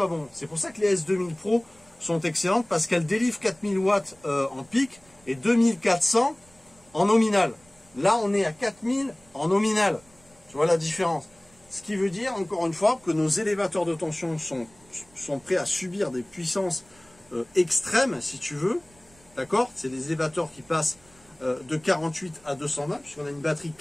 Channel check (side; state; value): right; noise; rumble, 29 dB below the sound